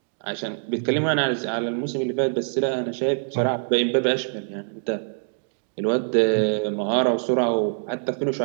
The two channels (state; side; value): silent; left; digital silence